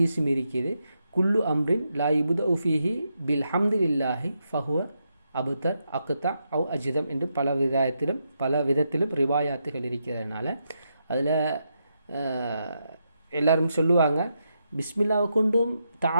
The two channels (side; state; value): both; inverted; correlation -0.83